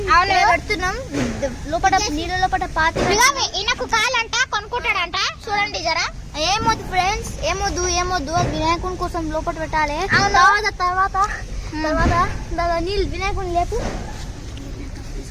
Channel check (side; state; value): both; identical; correlation 1.00